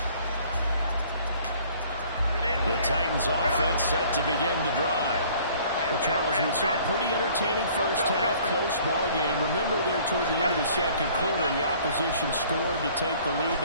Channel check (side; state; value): both; inverted; correlation -0.55